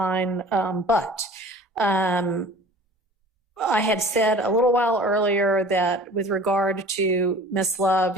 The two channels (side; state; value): both; normal; correlation 0.44